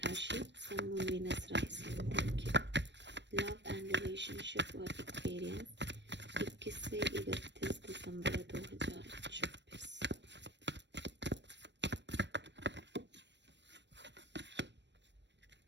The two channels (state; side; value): late; left; 0.52 ms